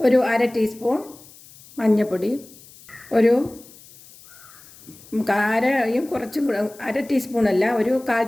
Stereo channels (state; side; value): noise; left; hiss, 22 dB below the sound